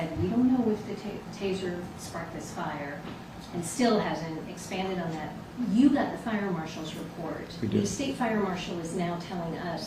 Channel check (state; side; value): identical; both; correlation 1.00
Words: we don't know if the taser sparked this fire, and still hasn't expanded on that. You got the fire marshal's report. We did. The state fire marshal is now telling